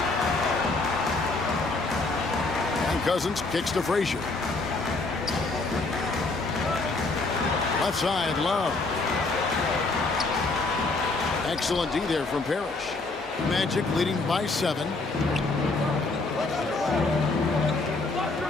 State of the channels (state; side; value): quieter; right; 3.5 dB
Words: And Cousins kicks to Frazier. Left side, Love. Excellent D there from Parrish. Magic leading by 7.